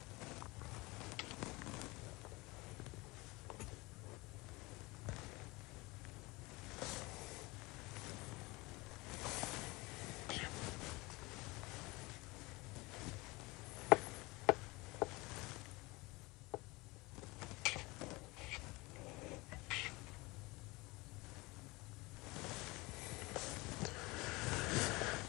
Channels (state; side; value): quieter; right; 23.6 dB